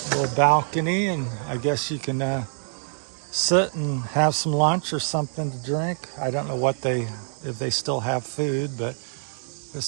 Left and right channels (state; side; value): silent; left; 62 dB below the other